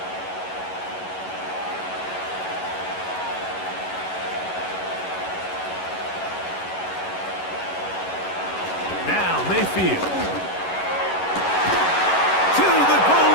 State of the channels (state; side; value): late; right; 11 ms